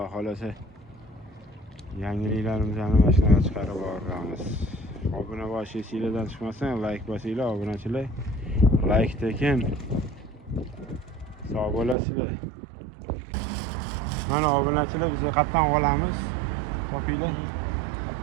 xolasa yangiliklarimizni mana shunaqa chiqarib boramiz. Obuna bo'lish sizlardan chiqmasin, like bosinglar obunachilar. Like tekin. Sog' bo'lasizlar. Mana obunachilar biz qatdan olamiz. Topinglar.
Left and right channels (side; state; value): left; drops out; at 12.0 s